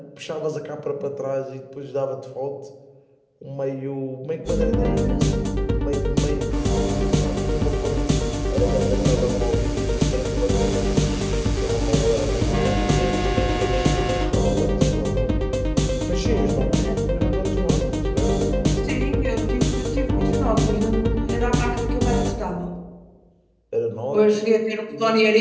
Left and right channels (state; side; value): identical; both; correlation 1.00